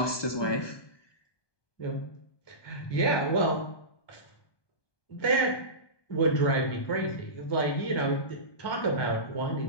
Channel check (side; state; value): right; late; 1.2 ms